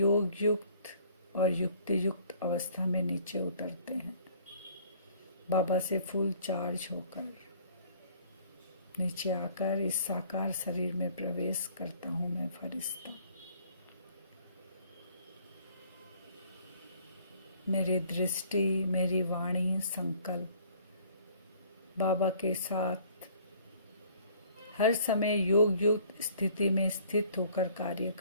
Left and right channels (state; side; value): inverted; both; correlation -0.56